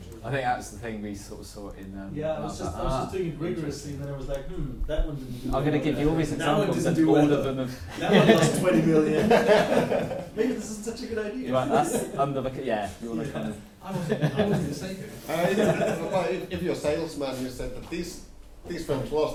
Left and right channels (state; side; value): identical; both; correlation 1.00